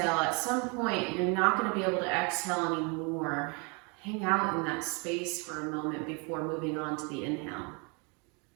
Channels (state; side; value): quieter; left; 32.5 dB